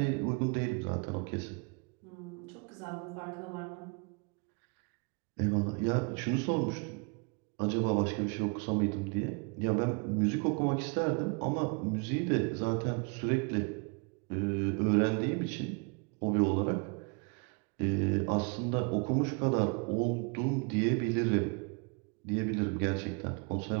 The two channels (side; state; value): left; quieter; 34.1 dB